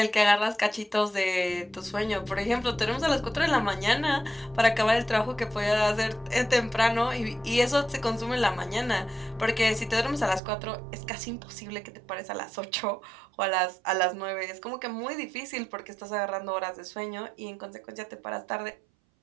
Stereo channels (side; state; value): left; drops out; at 10.4 s